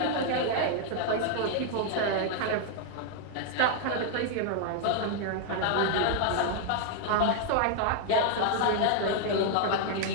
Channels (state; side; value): different; both; correlation 0.00